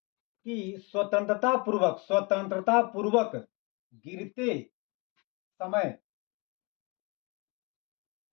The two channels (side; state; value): right; quieter; 29.6 dB